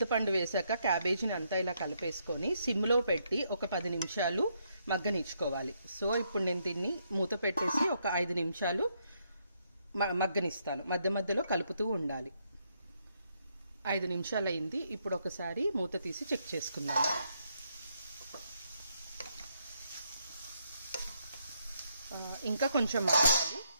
వేసాక క్యాబేజీని అంతా ఇలా కలిపేసుకొని సిమ్లో పెట్టి ఒక 10 నిమిషాలు మగ్గనిచ్చుకోవాలి. సో ఇప్పుడు నేను దీన్ని మూత పెట్టేసి ఒక 5 నిమిషాలు మగ్గనిస్తాను. మధ్య మధ్యలో కలుపుతూ ఉండాలి. 5 నిమిషాలు అయింది. ఇప్పుడు ఒకసారి మూత తీసి చెక్ చేసుకుందాం. ఇంకా కొంచెం మగ్గాలి.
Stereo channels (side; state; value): both; inverted; correlation -0.76